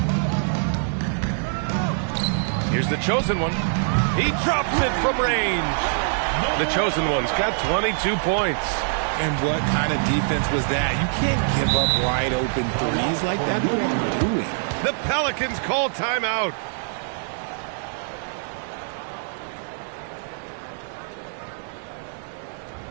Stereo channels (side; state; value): left; silent; digital silence